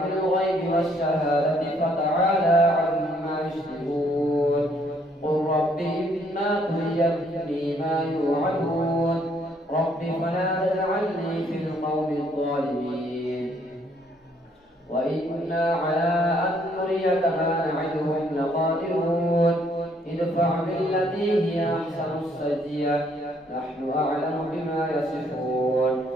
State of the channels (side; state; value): both; normal; correlation 0.67